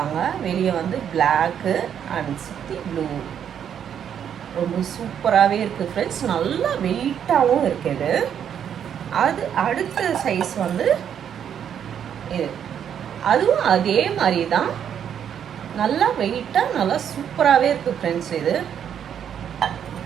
வெளியே வந்து பிளாக்கு அண்ட் சுற்றி ப்ளூ. ரொம்ப சூப்பராகவே இருக்குது ஃப்ரெண்ட்ஸ். நல்லா வெயிட்டாகவும் இருக்குது. அது அடுத்த சைஸ் வந்து இது, அதுவும் அதே மாதிரி தான், நல்லா வெயிட்டாக நல்லா சூப்பராகவே இருக்குது ஃப்ரெண்ட்ஸ்.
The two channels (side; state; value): left; quieter; 8.8 dB